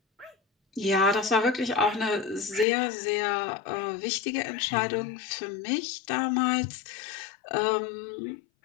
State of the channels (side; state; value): right; drops out; at 2.7 s